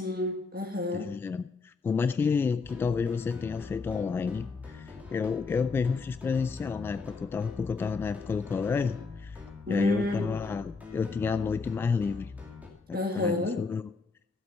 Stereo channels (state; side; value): quieter; right; 4.4 dB